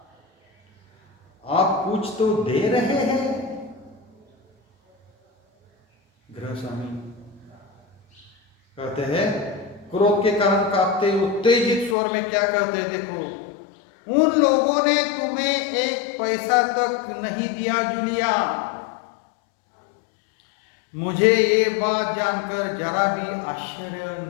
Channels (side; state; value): right; drops out; at 12.0 s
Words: आप कुछ तो दे रहे हैं. गृह स्वामी कहते हैं, क्रोध के कारण कांपते उत्तेजित स्वर में क्या कहते हैं, देखो, उन लोगों ने तुम्हें 1 पैसा तक नहीं दिया जूलिया. मुझे ये बात जानकर जरा भी आश्चर्य